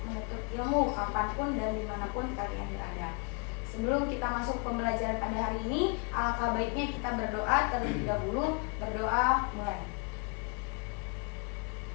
menuntut ilmu kapanpun dan dimanapun kalian berada. Sebelum kita masuk pembelajaran pada hari ini, alangkah baiknya kita berdoa terlebih dahulu. Berdoa mulai.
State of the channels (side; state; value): right; quieter; 35.9 dB